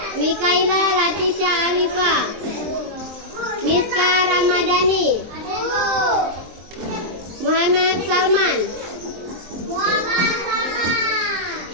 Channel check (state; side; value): late; left; 23 ms